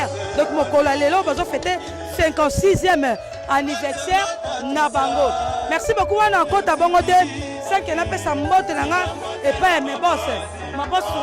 donc mokolo lelo bazo fêter 56e anniversaire na bango. Merci beaucoup wana kota bongo te 5 na pesa mbote nanga et pas mes boss ma boss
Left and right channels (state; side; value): identical; both; correlation 1.00